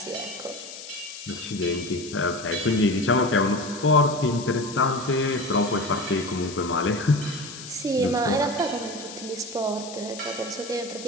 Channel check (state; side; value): noise; left; hiss, 13 dB below the sound